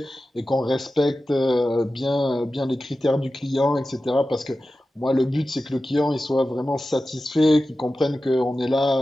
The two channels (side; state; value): both; normal; correlation 0.94